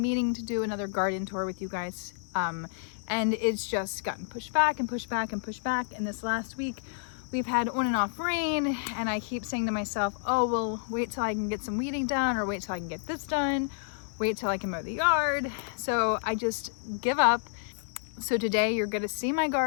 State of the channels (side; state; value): right; silent; digital silence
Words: meaning to do another garden tour with you guys. And it's just gotten pushed back and pushed back and pushed back. And this last week we've had on and off rain and I keep saying to myself, oh, well, wait till I can get some weeding done, or wait till I can get this done, wait till I can mow the yard. So I just give up. So today you're going to see my